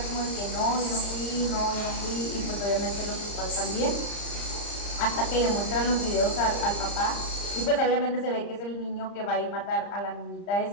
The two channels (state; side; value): late; right; 35 ms